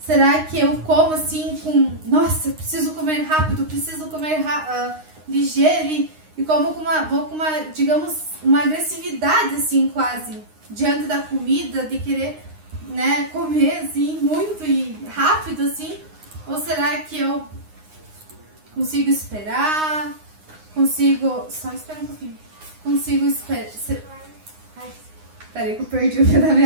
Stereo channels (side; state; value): left; late; 9.7 ms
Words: que eu como assim com, nossa, eu preciso comer rápido, preciso comer ligeiro e como vou com uma, digamos, uma agressividade assim quase diante da comida, de querer, né, comer assim muito e rápido assim? Ou será que eu consigo esperar? Só espera um pouquinho. Consigo esperar. Peraí que eu perdi o fio da